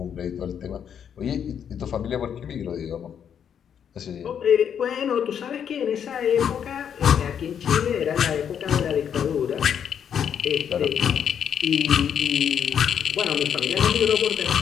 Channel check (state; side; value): quieter; right; 8.3 dB